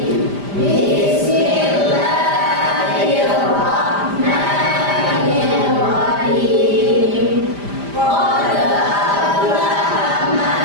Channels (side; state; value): left; late; 5.0 ms